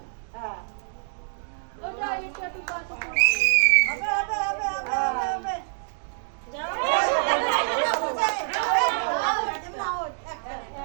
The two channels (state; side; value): silent; left; digital silence